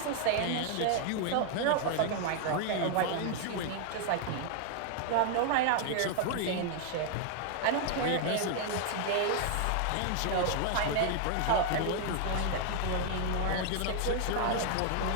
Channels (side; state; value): both; different; correlation 0.00